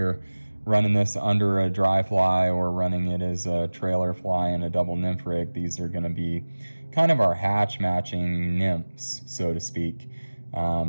running this under a dry fly or running it as a trailer fly in a double nymph rig, these are going to be kind of our hatch matching nymphs, so to speak.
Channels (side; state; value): both; inverted; correlation -1.00